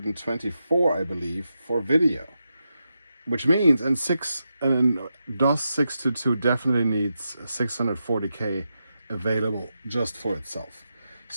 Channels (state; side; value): inverted; both; correlation -0.87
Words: I believe, for video. Which means, and DOS 622 definitely needs 640K available just for itself.